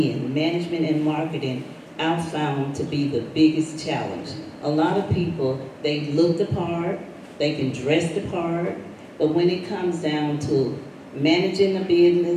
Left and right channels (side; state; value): both; identical; correlation 1.00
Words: end, management and marketing, I found to be the biggest challenge. A lot of people, they look the part, they can dress the part, but when it comes down to managing a